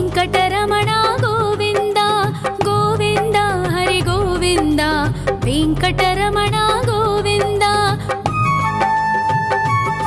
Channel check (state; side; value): identical; both; correlation 1.00